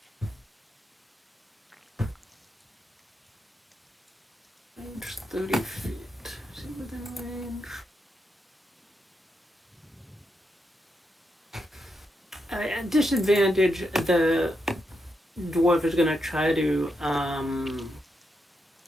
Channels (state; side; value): normal; both; correlation 0.83